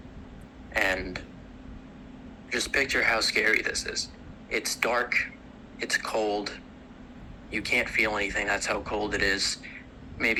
and just picture how scary this is. It's dark, it's cold, you can't feel anything, that's how cold it is.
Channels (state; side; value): identical; both; correlation 1.00